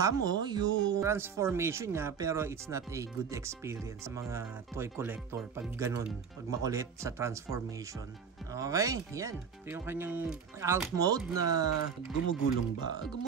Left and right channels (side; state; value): left; quieter; 6.6 dB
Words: mo yung transformation niya pero it's not a good experience sa mga toy collector pag ganun, pag makulit sa transformation. Okay, yan. Yung kanyang alt mode na gumugulong ba?